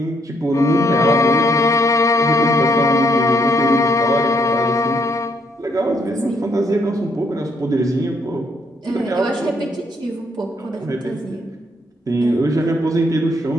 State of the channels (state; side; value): normal; both; correlation 0.71